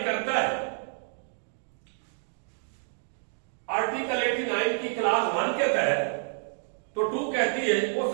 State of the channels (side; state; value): left; silent; digital silence